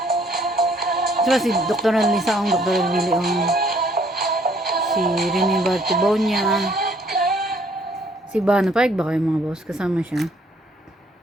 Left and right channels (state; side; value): normal; both; correlation 0.63